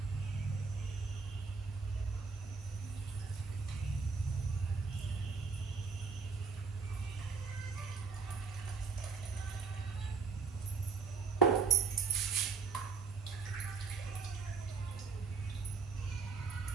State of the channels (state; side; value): quieter; left; 5.1 dB